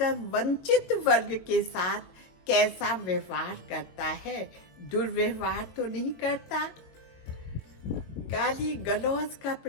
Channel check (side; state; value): right; late; 22 ms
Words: वंचित वर्ग के साथ कैसा व्यवहार करता है। दुर्व्यवहार तो नहीं करता, गाली गलौज का